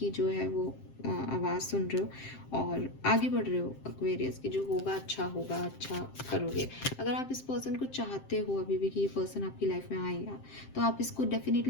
जो है वो आवाज़ सुन रहे हो और आगे बढ़ रहे हो एक्वेरियस, की जो होगा अच्छा करोगे। अगर आप इस पर्सन को चाहते हो अभी भी कि ये पर्सन आपकी लाइफ में आएगा, तो आप इसको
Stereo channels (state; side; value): late; right; 7.6 ms